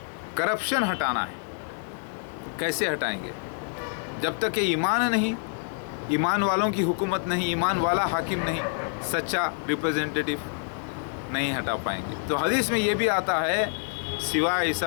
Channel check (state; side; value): silent; right; digital silence